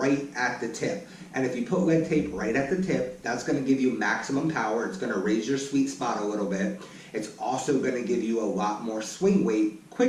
at the tip. And if you put lead tape right at the tip, that's going to give you maximum power. It's going to raise your sweet spot a little bit. It's also going to give you a lot more swing weight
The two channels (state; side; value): identical; both; correlation 1.00